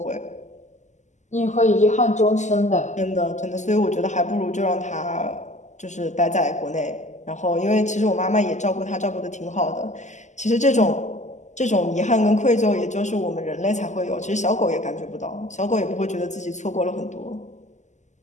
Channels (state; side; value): late; right; 0.34 ms